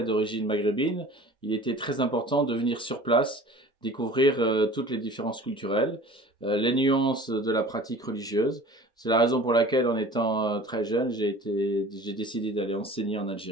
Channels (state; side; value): normal; both; correlation 0.43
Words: d'origine maghrébine, il était très important de venir sur place, découvrir toutes les différences culturelles, les nuances de la pratique religieuse. C'est la raison pour laquelle, en étant très jeune, j'ai décidé d'aller enseigner en